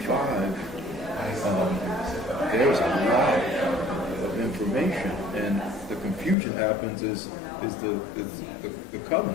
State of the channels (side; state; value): right; drops out; at 6.4 s